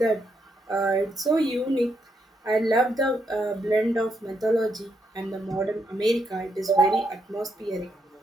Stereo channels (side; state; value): both; normal; correlation 0.79